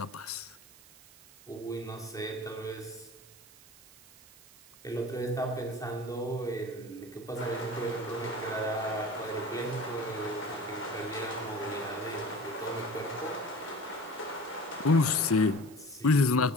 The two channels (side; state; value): right; noise; hiss, 22 dB below the sound